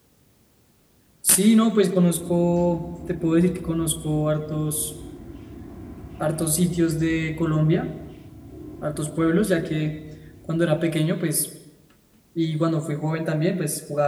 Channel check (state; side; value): identical; both; correlation 1.00